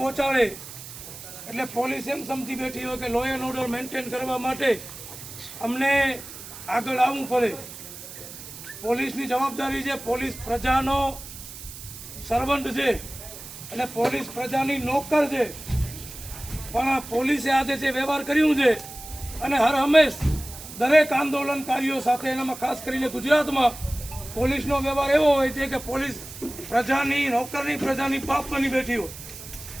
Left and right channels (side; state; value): right; noise; hiss, 13 dB below the sound